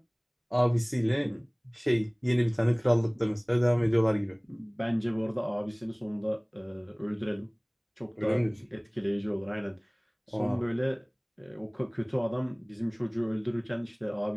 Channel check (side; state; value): both; identical; correlation 1.00